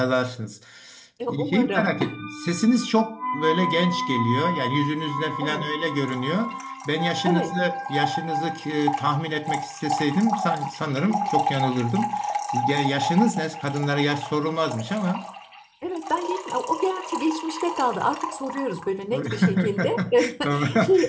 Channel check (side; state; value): both; identical; correlation 1.00